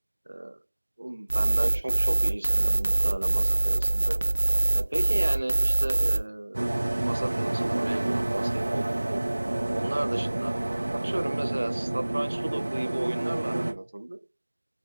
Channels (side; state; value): both; inverted; correlation -1.00